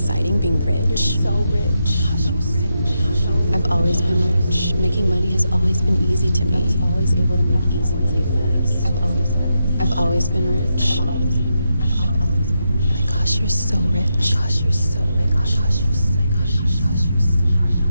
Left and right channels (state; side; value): inverted; both; correlation -0.85